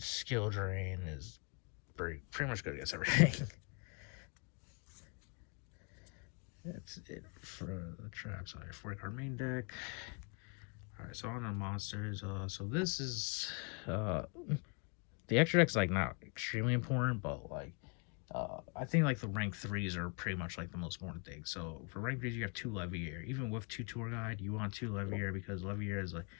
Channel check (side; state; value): right; quieter; 35.1 dB